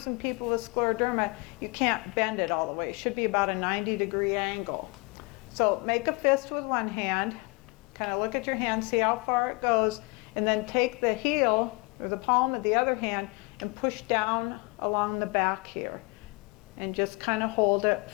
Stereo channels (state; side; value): quieter; right; 27.9 dB